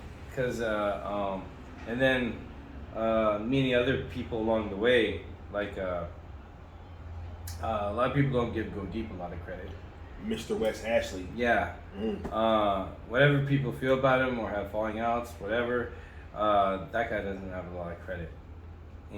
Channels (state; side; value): identical; both; correlation 1.00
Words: Because, and then meeting other people along the way, like, a lot of people don't give Go Deep a lot of credit. Mr. Wes Ashley. Yeah. Whatever people feel about him or have falling outs, whatever, that guy doesn't have a lot of credit.